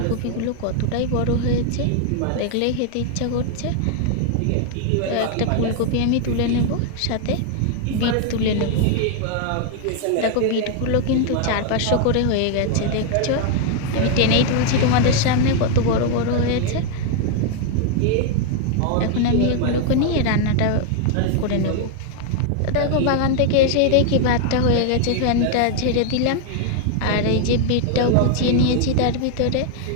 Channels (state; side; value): different; both; correlation 0.00